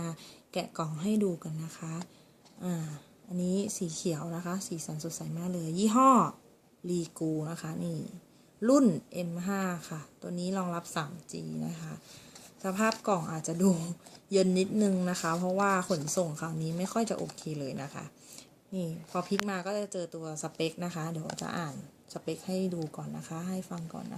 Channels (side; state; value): both; identical; correlation 1.00